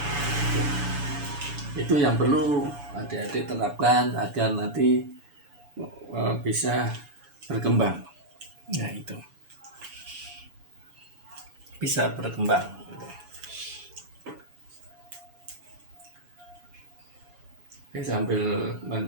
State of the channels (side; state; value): left; late; 7.1 ms